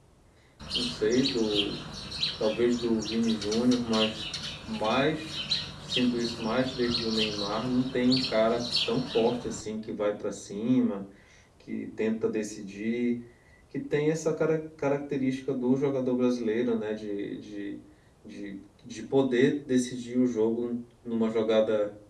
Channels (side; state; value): both; identical; correlation 1.00